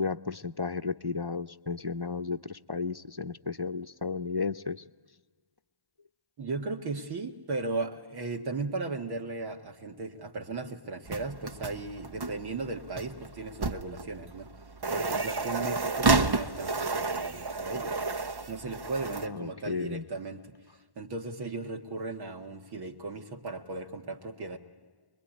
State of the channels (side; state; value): left; late; 1.1 ms